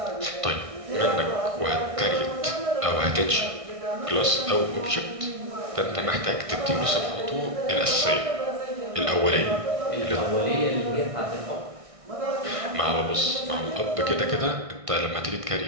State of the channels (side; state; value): left; late; 1.6 ms